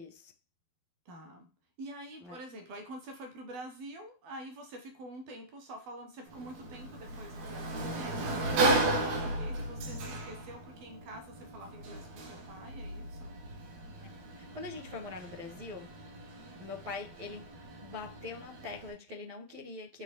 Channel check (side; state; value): left; late; 12 ms